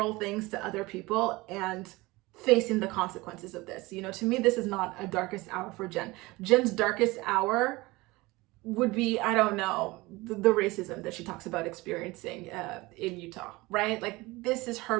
things to other people and facing the consequences of this. You know, to me, this is not a darkest hour for Jen. Jen's darkest hour would be, I don't know, the racism that she talks about experiencing in Utah, right? Like, this is her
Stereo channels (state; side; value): quieter; left; 21.7 dB